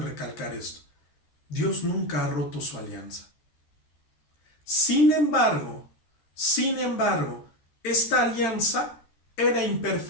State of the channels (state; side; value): late; right; 13 ms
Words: recalcar esto. Dios nunca ha roto su alianza. Sin embargo, esta alianza era